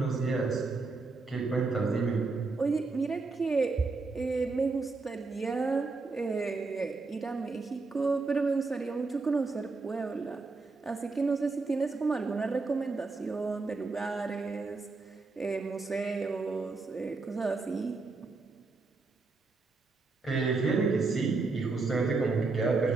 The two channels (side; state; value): left; quieter; 3.9 dB